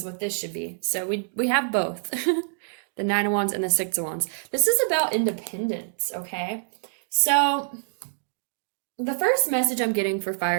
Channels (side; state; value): left; silent; digital silence